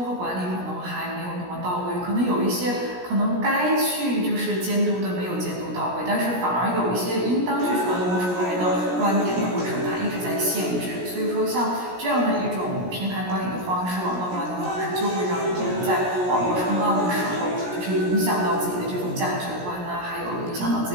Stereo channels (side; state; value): left; late; 17 ms